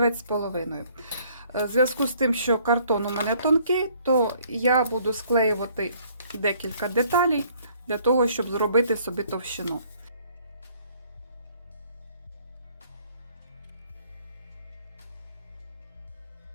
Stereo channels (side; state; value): both; inverted; correlation -0.61